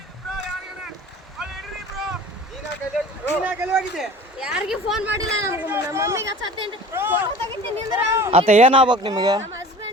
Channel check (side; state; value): both; normal; correlation 0.42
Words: ಯಾರಿಗೆ ಫೋನ್ ಮಾಡಿಲ್ಲ, ನಮ್ಮ ಮಮ್ಮಿಗೆ ಹಚ್ಚತ್ತೇನ್ರಿ, ಫೋಟೋ ತೆಗಿತೀನಿ ಅಂದ್ರೆ ಆತ ಏನಾಗ್ಬೇಕು ನಿಮಗೆ? ನಮ್ಮ